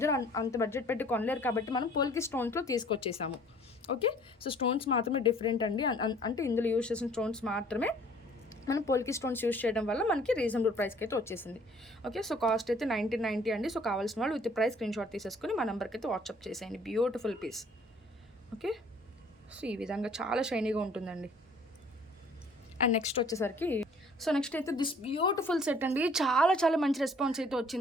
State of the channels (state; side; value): normal; both; correlation 0.55